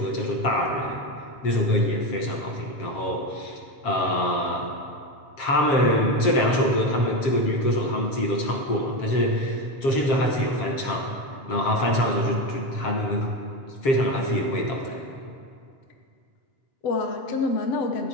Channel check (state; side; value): late; right; 7.4 ms